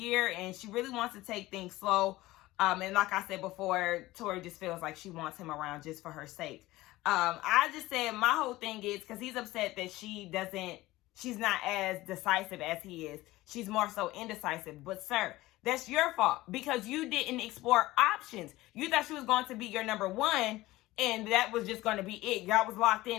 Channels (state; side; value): quieter; right; 18.1 dB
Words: and she really wants to take things slow. And like I said before, Tori just feels like she wants him around just for her sake. I just said my whole thing is because he's upset that she's not as decisive as he is. She's more so indecisive. But sir, that's your fault because you didn't explore options. You thought she was going to be your number one and that was just going to be it. Y'all was locked